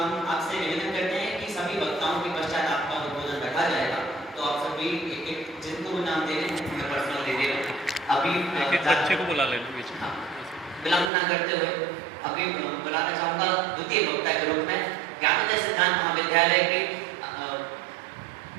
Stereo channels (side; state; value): left; drops out; at 11.1 s